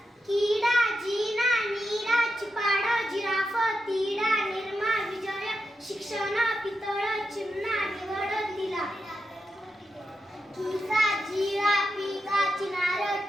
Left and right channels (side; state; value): both; normal; correlation 0.87